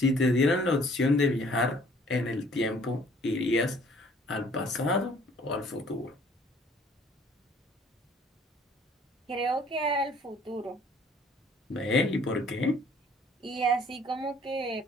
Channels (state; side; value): normal; both; correlation 0.57